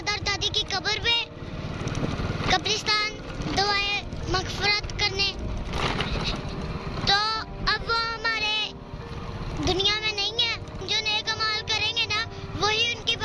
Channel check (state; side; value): identical; both; correlation 1.00